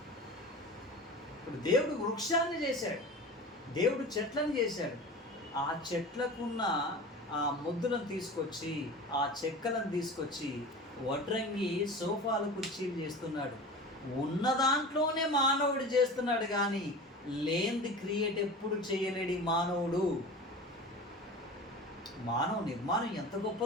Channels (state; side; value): normal; both; correlation 0.34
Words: ఇప్పుడు దేవుడు వృక్షాన్ని చేశాడు, దేవుడు చెట్లను చేశాడు. ఆ చెట్లకున్న ఆ ముద్దులను తీసుకొచ్చి, ఆ చెక్కలను తీసుకొచ్చి వడ్రంగి సోఫాలు కుర్చీలు చేస్తున్నాడు. ఉన్న దాంట్లోనే మానవుడు చేస్తున్నాడు, కానీ లేనిది క్రియేట్ ఎప్పుడు చేయలేడు మానవుడు. మానవ నిర్మాణం ఎంత